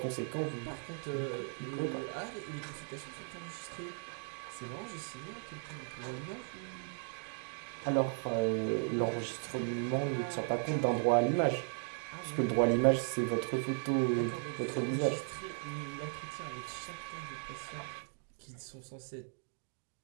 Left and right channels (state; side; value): silent; left; 53 dB below the other